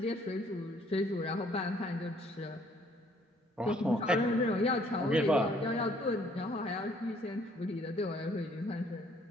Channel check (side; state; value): both; normal; correlation 0.63